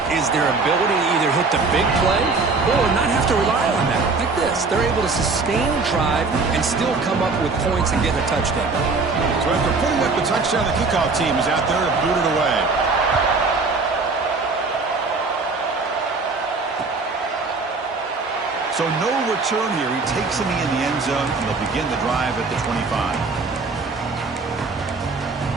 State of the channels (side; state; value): left; quieter; 4.1 dB